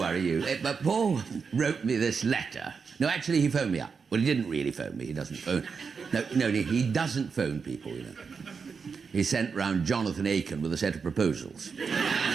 you. But Paul wrote me this letter. No, actually, he phoned me up. Well, he didn't really phone me. He doesn't phone. No, he doesn't phone people, you know. He sent round Jonathan Aiken with a set of proposals. And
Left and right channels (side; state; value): left; quieter; 5.5 dB